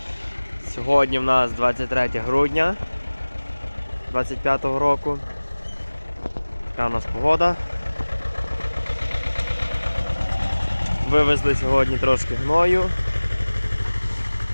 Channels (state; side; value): inverted; both; correlation -1.00